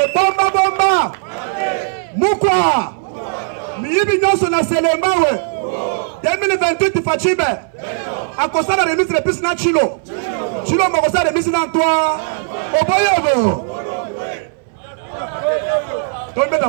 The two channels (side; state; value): left; silent; 63 dB below the other